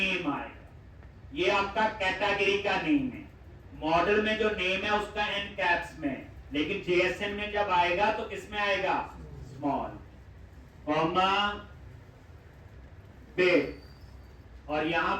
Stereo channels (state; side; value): identical; both; correlation 1.00